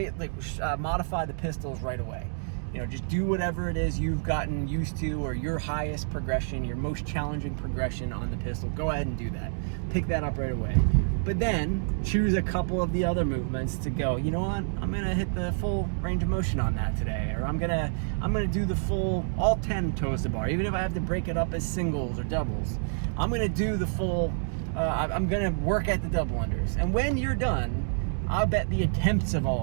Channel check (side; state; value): left; silent; digital silence